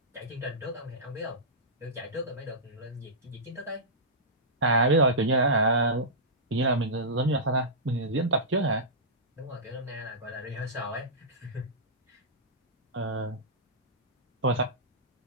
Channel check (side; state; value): both; normal; correlation -0.16